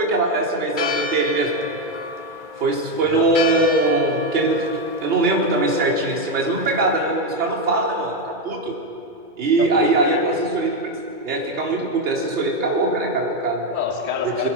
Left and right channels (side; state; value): left; late; 2.3 ms